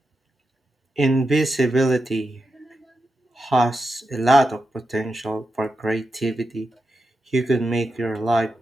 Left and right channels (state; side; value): normal; both; correlation 0.88